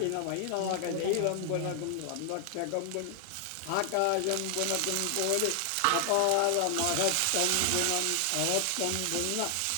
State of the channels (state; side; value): different; both; correlation 0.00